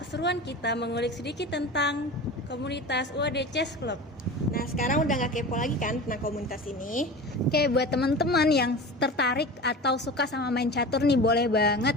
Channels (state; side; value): normal; both; correlation 0.33